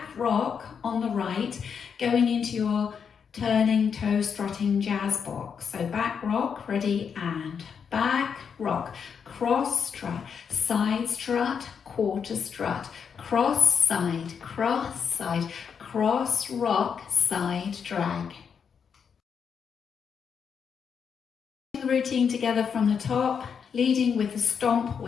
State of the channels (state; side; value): quieter; right; 6.8 dB